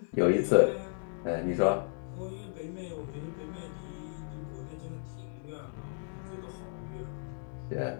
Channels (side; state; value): right; silent; digital silence